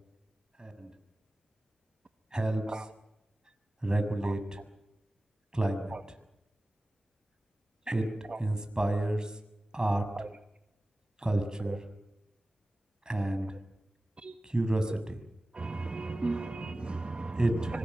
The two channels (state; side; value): normal; both; correlation 0.96